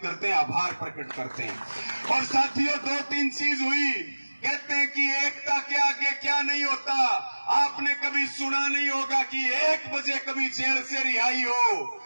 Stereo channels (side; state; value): both; inverted; correlation -1.00